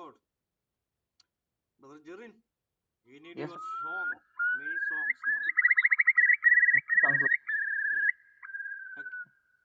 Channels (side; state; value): both; identical; correlation 1.00